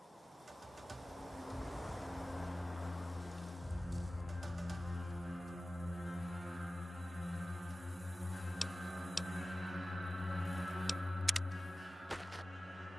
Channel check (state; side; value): normal; both; correlation 0.96